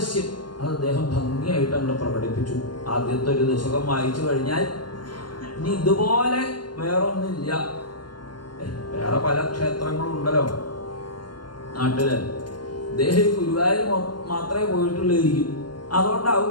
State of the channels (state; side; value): late; right; 0.71 ms